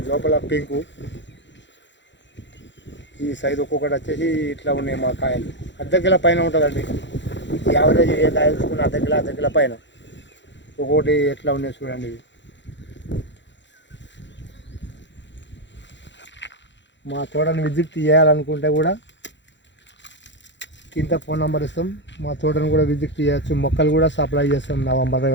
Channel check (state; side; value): late; right; 0.53 ms